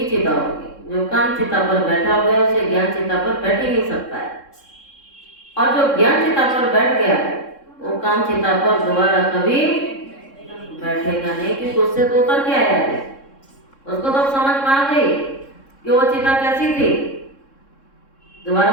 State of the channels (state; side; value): late; right; 3.7 ms